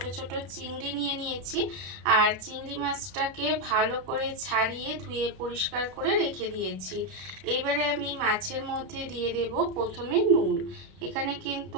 ছোট চিংড়ি নিয়ে নিয়েছি। আর চিংড়ি মাছটাকে ভালো করে ছাড়িয়ে ধুয়ে পরিষ্কার করে রেখে দিয়েছি। এইবারে আমি মাছের মধ্যে দিয়ে দেব প্রথমে নুন। এখানে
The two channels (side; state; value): left; late; 32 ms